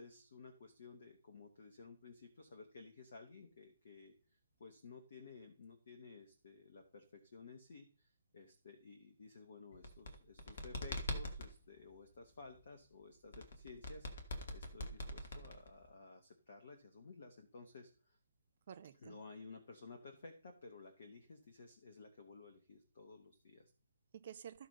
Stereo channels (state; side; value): inverted; both; correlation -0.67